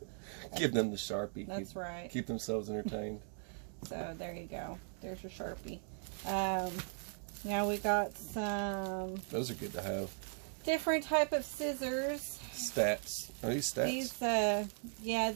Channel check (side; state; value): left; silent; 52 dB below the other